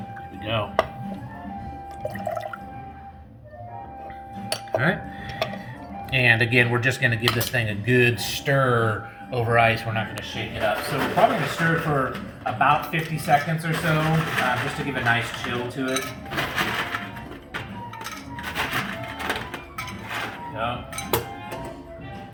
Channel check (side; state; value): both; identical; correlation 1.00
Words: we go. right. And again, we're just going to give this thing a good stir over ice. We're not going to shake it up. So we're probably going to stir it for about 50 seconds or so, just to give a nice chill to it. There we go.